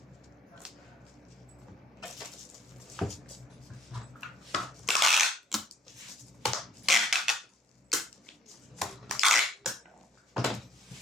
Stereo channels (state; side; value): normal; both; correlation 0.61